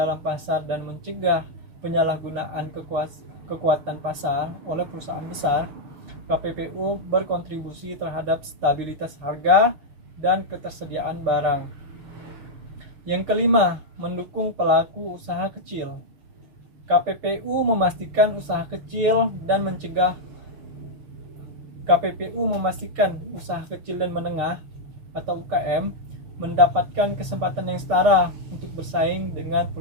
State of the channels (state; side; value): late; left; 6.5 ms